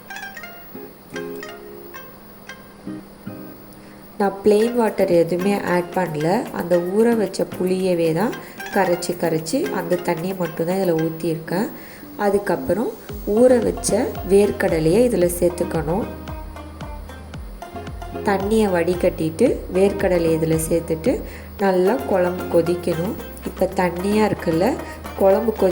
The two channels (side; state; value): both; identical; correlation 1.00